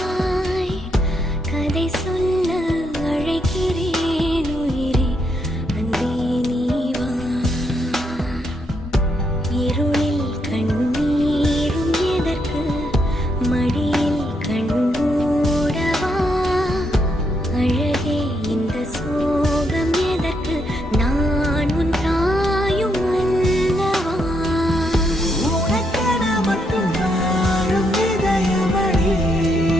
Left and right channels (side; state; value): both; normal; correlation 0.77